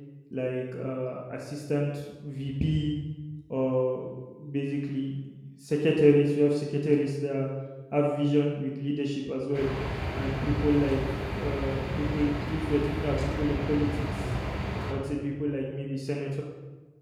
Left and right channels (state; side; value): identical; both; correlation 1.00